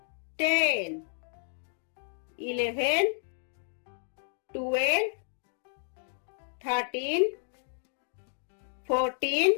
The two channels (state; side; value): silent; right; digital silence